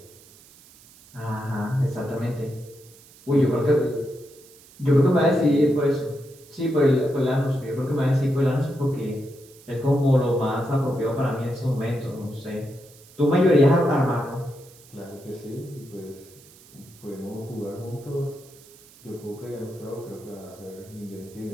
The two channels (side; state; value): right; noise; hiss, 24 dB below the sound